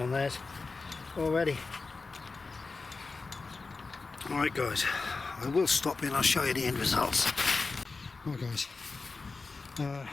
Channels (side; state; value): right; quieter; 4.0 dB